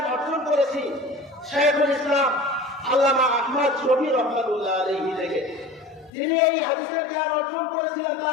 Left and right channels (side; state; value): right; drops out; at 6.1 s